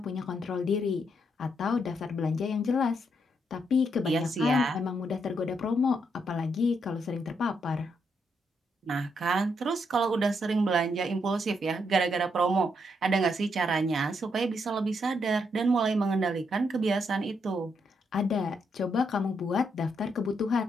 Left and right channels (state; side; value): normal; both; correlation 0.77